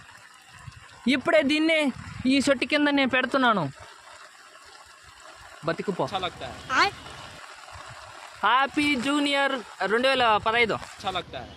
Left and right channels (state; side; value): identical; both; correlation 1.00